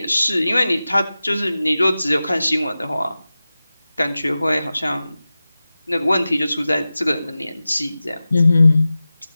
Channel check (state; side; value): inverted; both; correlation -0.95